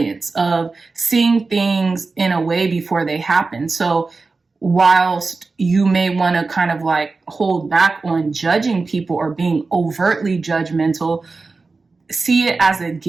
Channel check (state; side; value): quieter; left; 3.9 dB